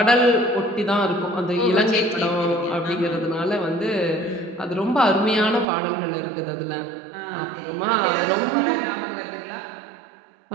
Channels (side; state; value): left; drops out; at 5.7 s